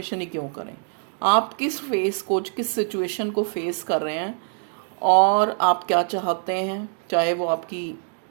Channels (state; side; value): silent; left; 58 dB below the other